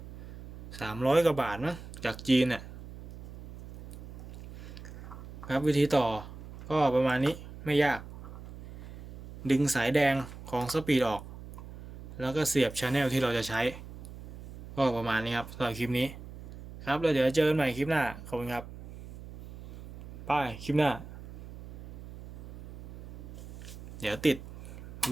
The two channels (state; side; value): noise; right; hum, 14 dB below the sound